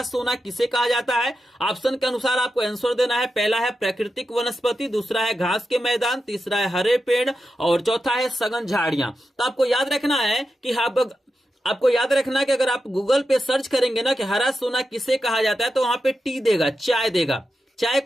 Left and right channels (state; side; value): normal; both; correlation 0.89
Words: सोना किसे कहा जाता है। ऑप्शन के अनुसार आपको आंसर देना है। पहला है प्राकृतिक वनस्पति, दूसरा है घास के मैदान, तीसरा है हरे पेड़ और चौथा है सघन झाड़ियां। तो आपको याद रखना है कि आपको याद रखना कि अगर आप गूगल पे सर्च करेंगे ना कि हरा सोना किसे कहा जाता है तो वहां पे टी देगा, चाय देगा। चाय